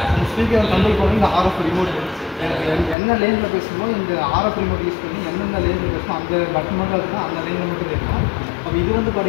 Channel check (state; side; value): drops out; right; at 3.0 s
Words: இந்த ஸ்பீக்கரை கண்ட்ரோல் பண்ணி இந்த ஆர்எஃப் ரிமோட், என்ன லேனில் பேசணுமோ இந்த ஆர்எஃப் ரிமோட் யூஸ் பண்ணி எந்தெந்த லேனில் பேசணும் அந்த பட்டன் மட்டும் இருக்குன்னா அந்த லேனில் மட்டும் கேட்கணும். அப்போ இது வந்து